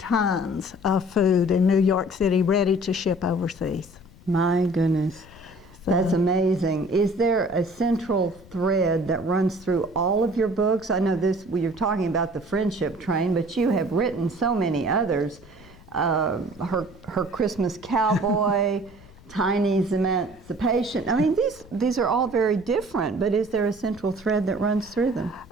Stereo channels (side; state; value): left; noise; rumble, 23 dB below the sound